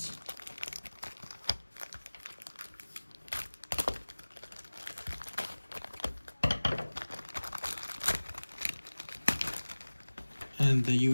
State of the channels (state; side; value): inverted; both; correlation -1.00